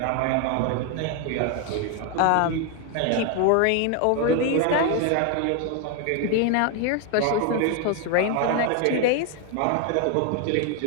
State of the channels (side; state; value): both; different; correlation 0.01